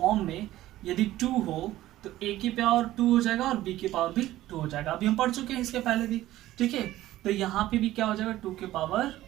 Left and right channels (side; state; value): left; quieter; 15.1 dB